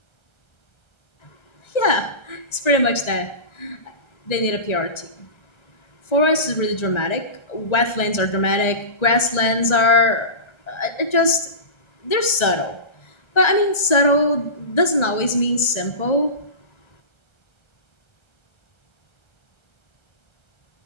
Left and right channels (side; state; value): right; late; 1.3 ms